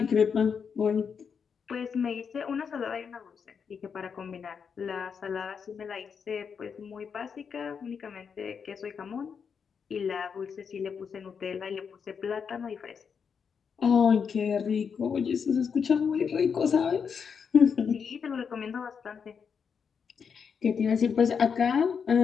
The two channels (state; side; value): quieter; right; 6.5 dB